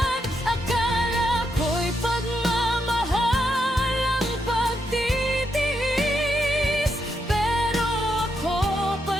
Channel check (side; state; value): both; normal; correlation 0.81